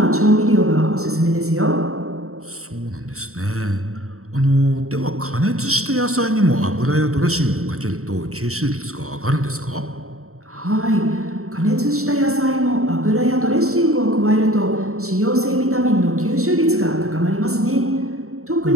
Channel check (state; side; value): late; left; 0.64 ms